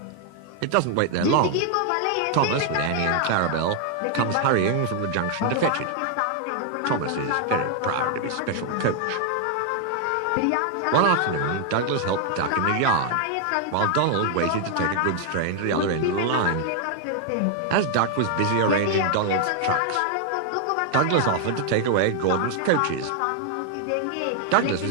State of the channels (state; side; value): different; both; correlation 0.00